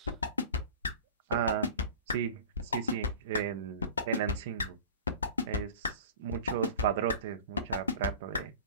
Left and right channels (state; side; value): inverted; both; correlation -0.39